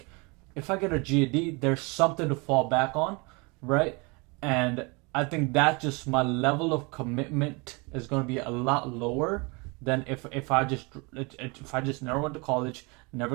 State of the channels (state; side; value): quieter; left; 28.8 dB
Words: if I get a GED, there's something to fall back on, right? And I think that just my level of commitment is going to be a lot lower than if I just never went to college,